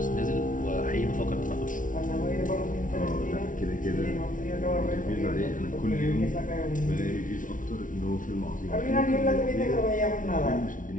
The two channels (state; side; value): late; right; 0.38 ms